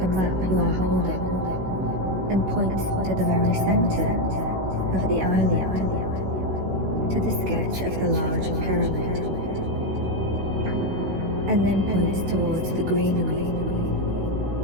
map you are holding and points to the very center of the island, to the sketch of the large pyramid, and then points towards the greenery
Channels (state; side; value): late; left; 16 ms